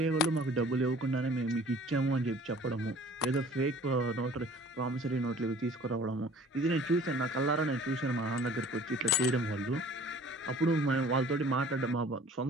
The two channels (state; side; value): normal; both; correlation 0.49